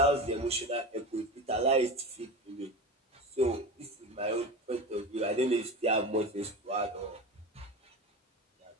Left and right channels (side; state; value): both; normal; correlation 0.28